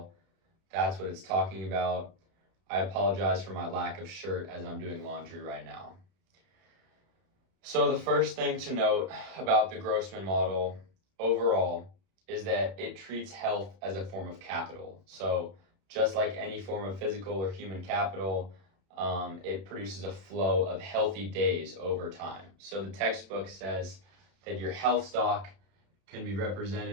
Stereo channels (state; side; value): late; left; 31 ms